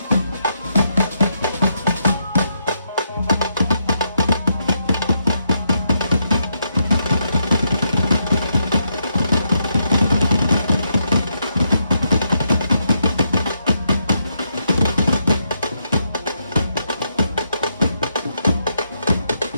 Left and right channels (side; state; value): both; inverted; correlation -0.79